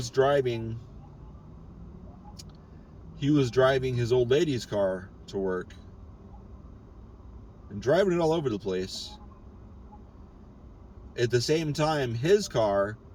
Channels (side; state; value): both; identical; correlation 1.00